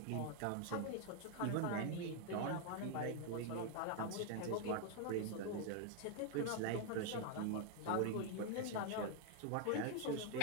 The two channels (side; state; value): both; different; correlation 0.00